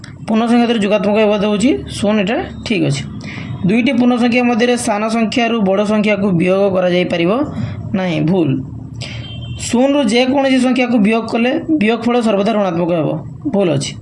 पूर्ण संख्या क्षेत्र जोगात्मक एवं होची शून्य एटा ठीक अच्छे। दुईटी पूर्ण संख्या मध्य सान संख्या बड़ संख्या को वियोग करा जाई परिबो नहीं भूल। शून्य रु जेकोसी संख्या को वियोग कले वियोगफल सर्वदा ऋणात्मक हेबो भूल अच्छी।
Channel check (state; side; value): identical; both; correlation 1.00